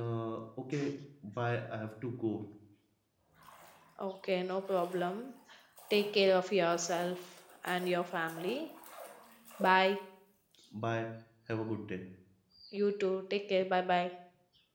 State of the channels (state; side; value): identical; both; correlation 1.00